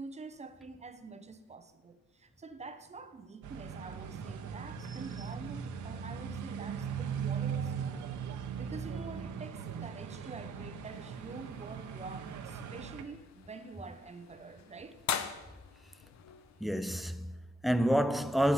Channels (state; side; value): normal; both; correlation 0.72